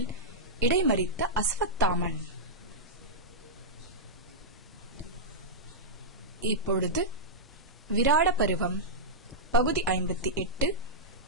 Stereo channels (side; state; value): both; normal; correlation -0.10